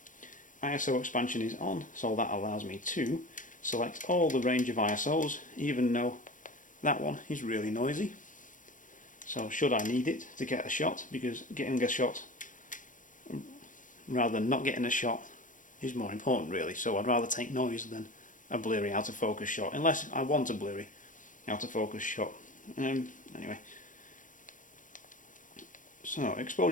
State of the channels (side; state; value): right; late; 0.38 ms